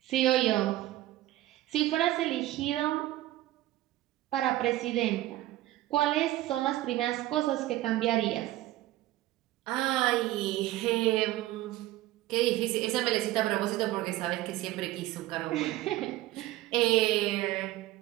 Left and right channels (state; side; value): quieter; left; 15.9 dB